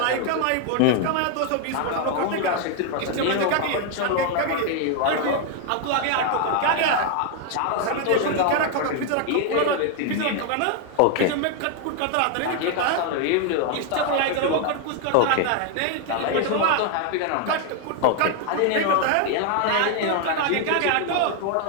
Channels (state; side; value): different; both; correlation 0.00